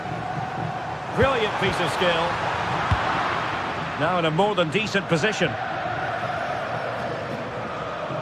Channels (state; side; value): identical; both; correlation 1.00